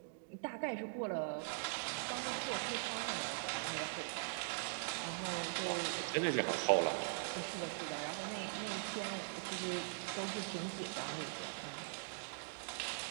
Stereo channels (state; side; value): silent; left; digital silence